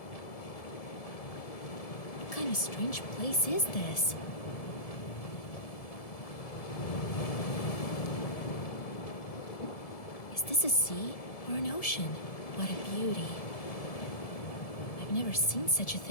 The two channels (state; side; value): late; right; 1.7 ms